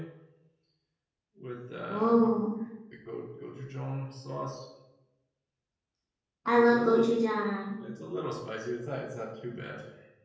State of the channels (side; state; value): both; identical; correlation 1.00